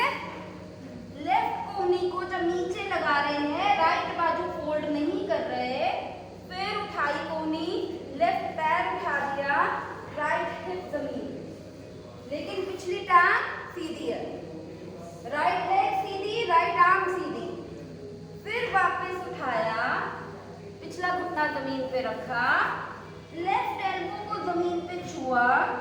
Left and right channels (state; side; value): identical; both; correlation 1.00